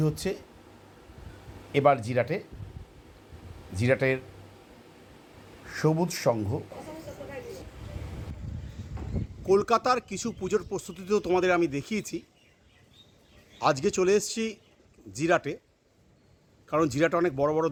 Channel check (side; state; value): both; identical; correlation 1.00